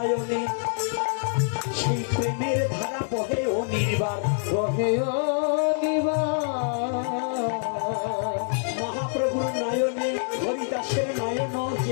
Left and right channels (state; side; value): silent; right; digital silence